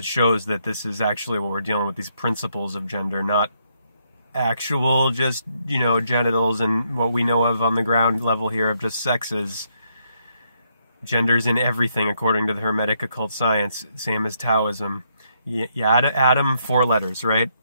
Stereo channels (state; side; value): inverted; both; correlation -0.75